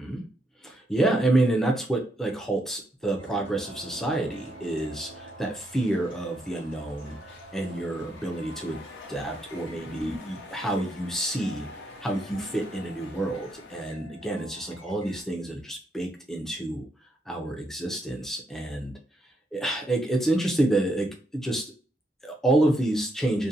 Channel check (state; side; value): normal; both; correlation 0.77